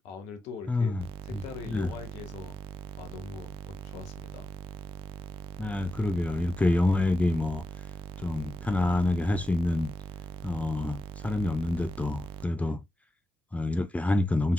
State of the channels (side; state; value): both; normal; correlation 0.90